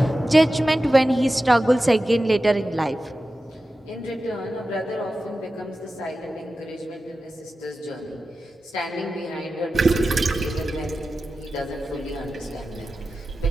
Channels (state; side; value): normal; both; correlation 0.93